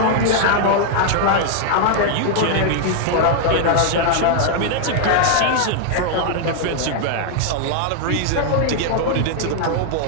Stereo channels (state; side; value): different; both; correlation -0.01